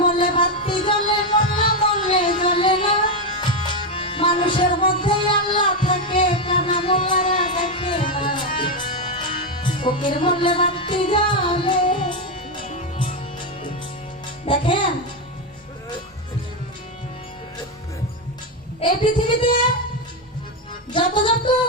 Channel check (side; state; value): both; normal; correlation 0.07